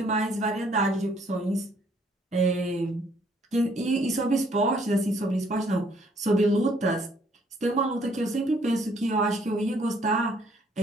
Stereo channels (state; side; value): normal; both; correlation 0.64